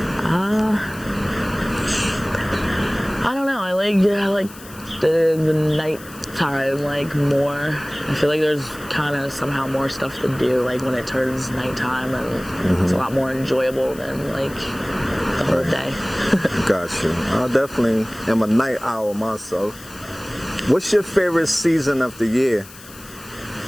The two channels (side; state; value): left; noise; hiss, 19 dB below the sound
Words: I don't know. I like the nighttime like more. I feel like there's kind of somehow more stuff to do like when it turns nighttime, and it's a lot more enjoyable than like the whole day. Got you. I definitely am a night owl myself. What's your favorite season of the year?